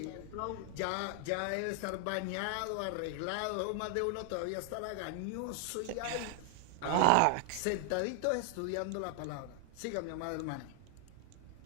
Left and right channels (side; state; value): both; different; correlation 0.00